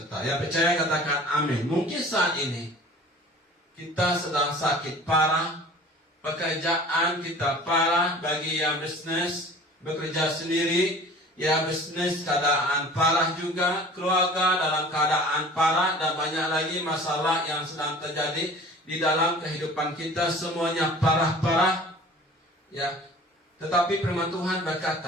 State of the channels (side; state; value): both; normal; correlation 0.44